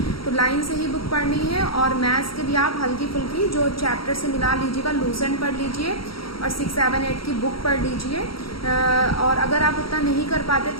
तो लाइन से ही बुक पढ़नी है। और मैथ्स के लिए आप हल्की फुल्की जो चैप्टर से मिला लीजिएगा, लूसेंट पढ़ लीजिए और 6, 7, 8 की बुक पढ़ लीजिए। और अगर आप उतना नहीं कर पाते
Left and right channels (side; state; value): right; late; 0.75 ms